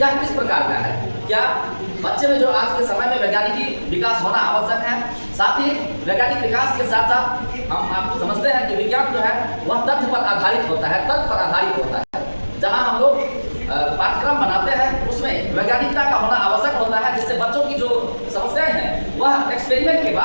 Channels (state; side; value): inverted; both; correlation -1.00